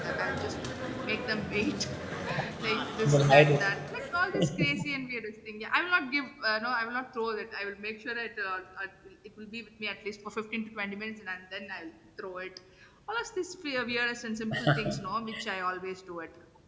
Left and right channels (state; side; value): identical; both; correlation 1.00